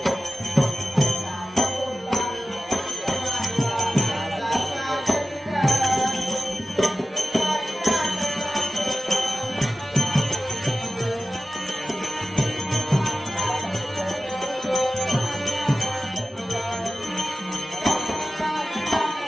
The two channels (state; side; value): normal; both; correlation 0.95